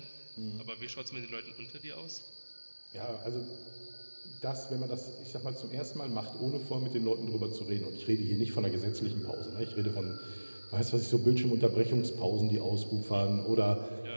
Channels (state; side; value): inverted; both; correlation -1.00